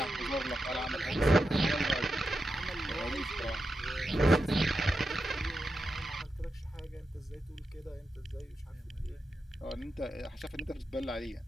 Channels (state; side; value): normal; both; correlation 0.89